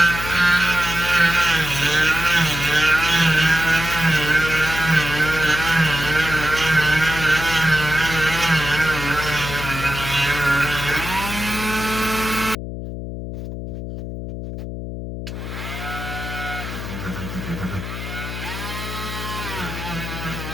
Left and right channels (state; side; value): noise; left; hum, 7 dB below the sound